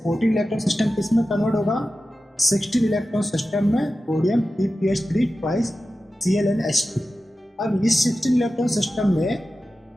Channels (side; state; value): both; normal; correlation 0.93